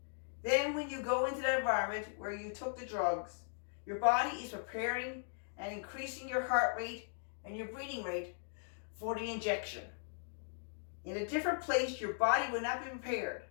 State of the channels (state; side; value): silent; right; digital silence